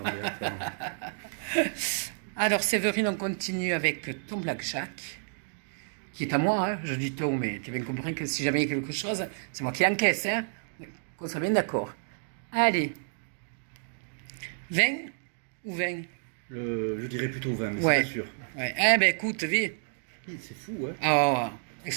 Alors, Séverine, on continue avec ton blackjack, qui est à moi, hein. Je dis ton, mais tu as bien compris que si jamais il y a quelque chose, c'est moi qui encaisse, hein. Qu'on soit bien d'accord. Allez. 20 ou 20? Je dirais plutôt 20, mais ouais. c'est pas sûr. Ouais. Eh ben écoute, vite. C'est fou, hein. Oh,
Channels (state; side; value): silent; left; digital silence